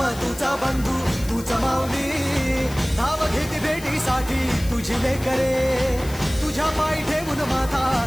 तुझा बंधू तूच माऊली. धाव घेती भेटीसाठी तुझी लेकरे, तुझ्या पायी ठेवून माथा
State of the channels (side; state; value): left; noise; hiss, 16 dB below the sound